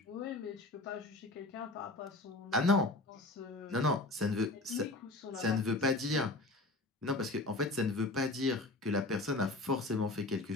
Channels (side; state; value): right; quieter; 3.0 dB